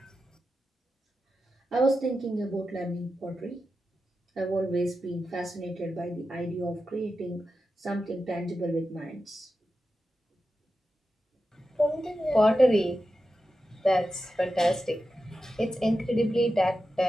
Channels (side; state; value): both; normal; correlation 0.91